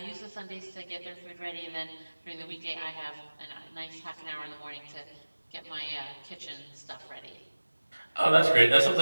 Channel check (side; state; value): both; inverted; correlation -1.00